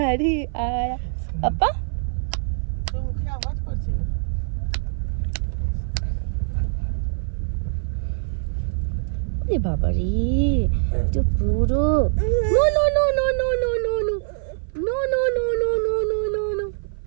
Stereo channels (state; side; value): silent; left; 56 dB below the other